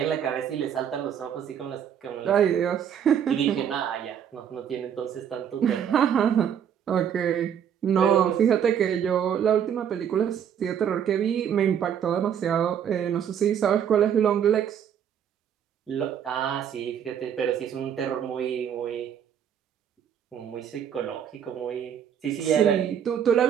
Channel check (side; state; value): left; quieter; 8.7 dB